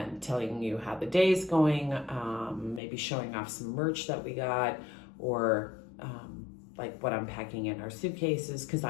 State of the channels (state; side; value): drops out; right; at 2.8 s